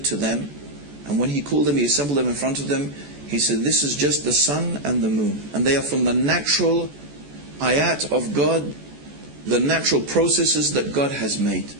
to them, and when he called them, he assembled them in front of them, he said, this is just the sun and the moon. And they are from the natural ayat of God, the natural processes that God has made.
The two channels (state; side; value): late; left; 14 ms